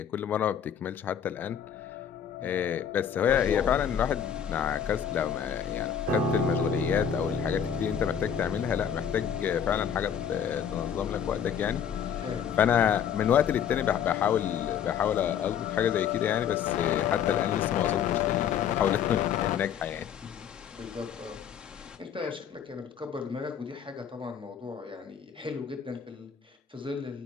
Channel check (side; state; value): right; quieter; 8.3 dB